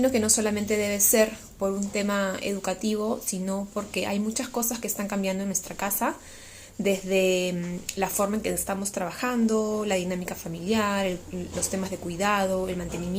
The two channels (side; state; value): both; identical; correlation 1.00